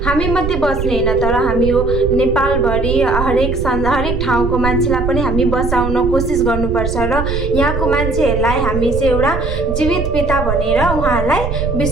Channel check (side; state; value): right; noise; rumble, 4 dB below the sound